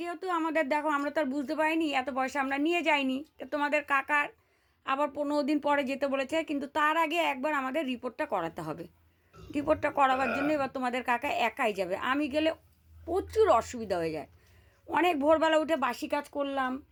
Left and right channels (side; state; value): both; identical; correlation 1.00